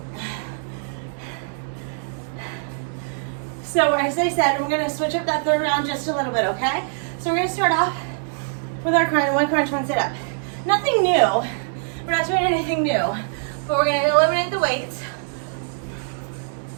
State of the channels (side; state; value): left; silent; digital silence